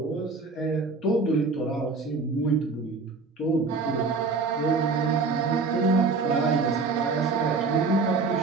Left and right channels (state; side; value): quieter; left; 4.2 dB